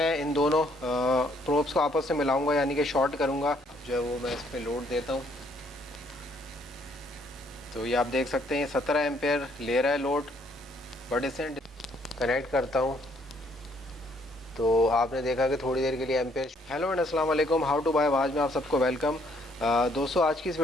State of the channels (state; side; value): normal; both; correlation 0.67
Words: इन दोनों प्रोब्स को आपस में मिलाऊंगा यानी कि शॉर्ट करूँगा, जो है वो मैं इस पर लोड देता हूँ। तो ये आप देख सकते हैं 17 एम्पेयर ले रहा है लोड, बट इसे कनेक्ट करता हूँ तो आपने देखा कि थोड़ी देर के लिए एम्पेयर। हेलो एंड अस्सलाम वालेकुम, हाउ टू बाय आवाज़ में आप सबको वेलकम। दोस्तों, आज की इस